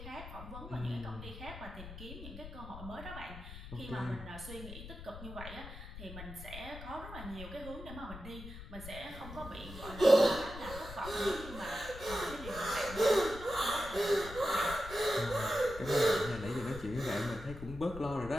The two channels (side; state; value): left; noise; rumble, 12 dB below the sound